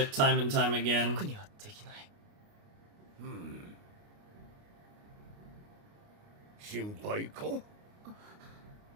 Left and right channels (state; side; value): late; left; 29 ms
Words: time and time again. 僕にはできない。心配か？